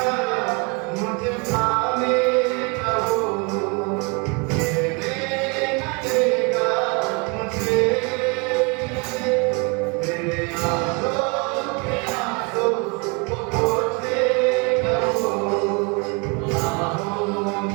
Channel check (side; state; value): left; quieter; 31.7 dB